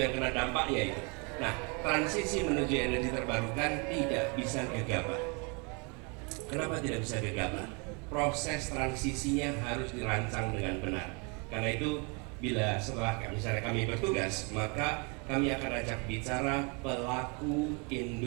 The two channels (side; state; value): left; quieter; 33.0 dB